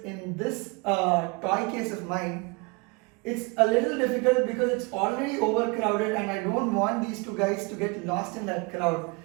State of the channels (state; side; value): quieter; left; 28.4 dB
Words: in this toy case of mine, it's a little difficult because it's already overcrowded and I don't want these two guys to get lost in that crowd.